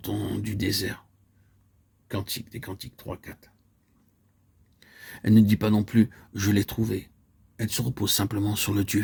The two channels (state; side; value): identical; both; correlation 1.00